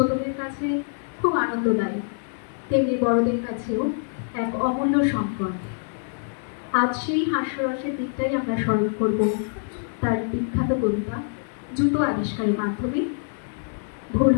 কাছে খুব আনন্দদায়ী, তেমনি বড়দের কাছেও এক অমূল্য সম্পদ। আজ সেই হাস্যরসের দিকটাই আমরা স্মরণ করব তার বিখ্যাত কবিতা জুতো আবিষ্কারের মাধ্যমে। ভুল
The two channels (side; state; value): right; silent; 62 dB below the other